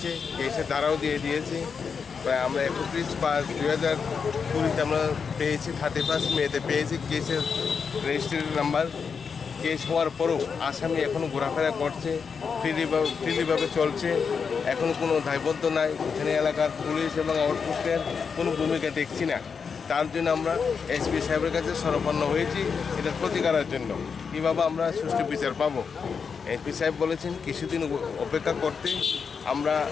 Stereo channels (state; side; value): quieter; right; 5.9 dB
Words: কেসের দ্বারাও দিয়ে দিয়েছে। প্রায় আমরা 31/5/2020 আমরা পেয়েছি, 31 মেতে পেয়েছি কেসের রেজিস্ট্রেশন নাম্বার। কেস হওয়ার পরও আসামি এখনও ঘোরাফেরা করছে, ফ্রিলিভাবে চলছে, এখনও কোনো দায়বদ্ধ নাই। এখানে এলাকার পুলিশ এবং আউটপোস্টের কোনো ভূমিকা দেখছি না। তার জন্য আমরা এসপি সাহেবের কাছে শরণাপন্ন হয়েছি, এটার প্রতিকারের জন্য কীভাবে আমরা সুষ্ঠু বিচার পাবো। এসপি সাহেব বলেছেন কিছুদিন অপেক্ষা করতে, আমরা